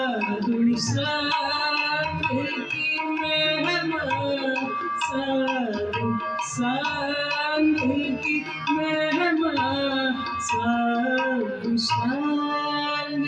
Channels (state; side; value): identical; both; correlation 1.00